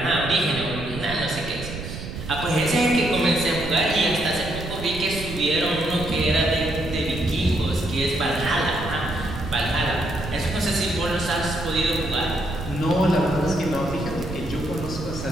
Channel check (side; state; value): right; noise; rumble, 9 dB below the sound